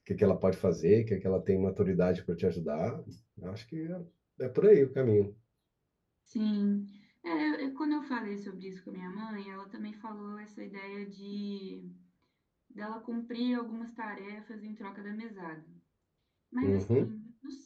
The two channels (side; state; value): both; identical; correlation 1.00